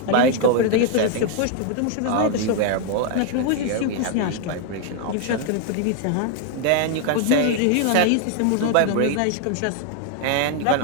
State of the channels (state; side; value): different; both; correlation 0.00